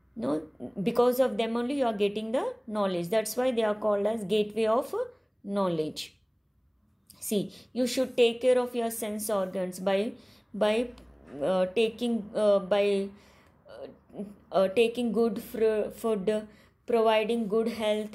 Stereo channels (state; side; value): identical; both; correlation 1.00